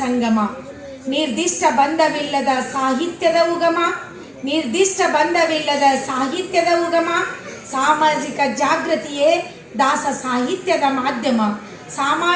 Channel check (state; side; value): identical; both; correlation 1.00